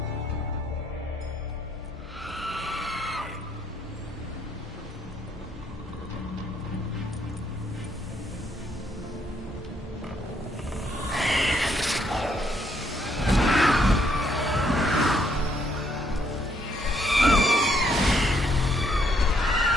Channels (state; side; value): normal; both; correlation 0.71